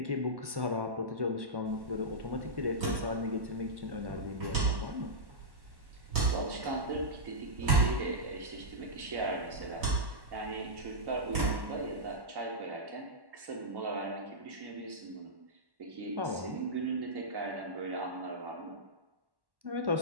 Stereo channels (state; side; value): late; left; 1.1 ms